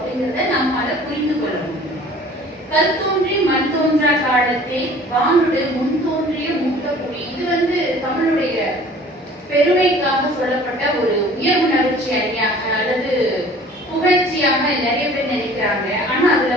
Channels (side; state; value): both; normal; correlation 0.49